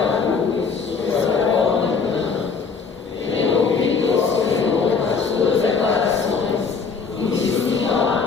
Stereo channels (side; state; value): right; quieter; 5.3 dB